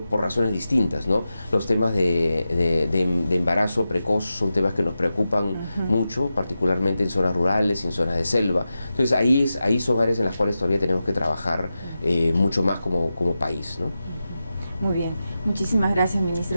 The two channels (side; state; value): both; inverted; correlation -0.92